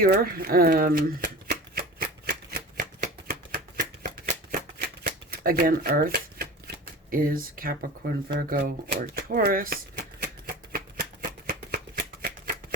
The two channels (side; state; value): both; normal; correlation 0.34